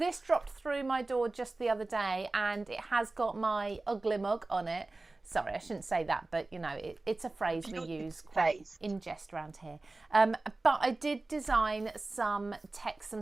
dropped through my door just the other day and it has got my ugly mug on it. Sorry, I shouldn't say that, but you know, it's a phrase we use quite in jest around here. But I did design some text,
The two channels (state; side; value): quieter; left; 3.2 dB